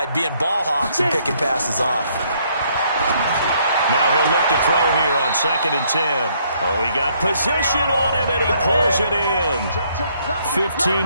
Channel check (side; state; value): both; inverted; correlation -0.68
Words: being ball hawks and picking passes off. Now he'll look to throw here on 2nd and 10. Oh, he got position on him, and he pulls it in.